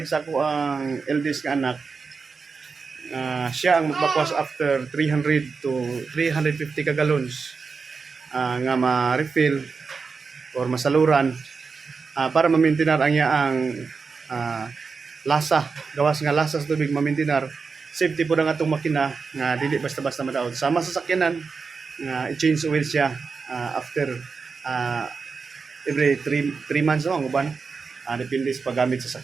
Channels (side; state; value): left; quieter; 5.0 dB